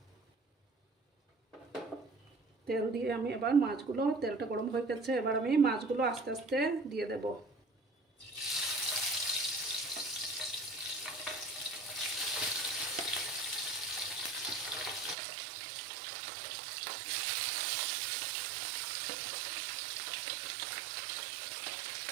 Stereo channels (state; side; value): drops out; left; at 15.2 s